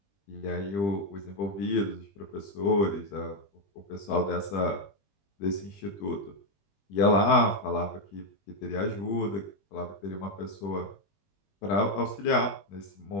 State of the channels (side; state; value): right; late; 20 ms